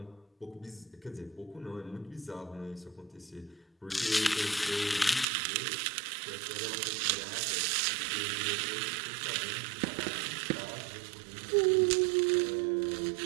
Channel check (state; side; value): drops out; left; at 5.2 s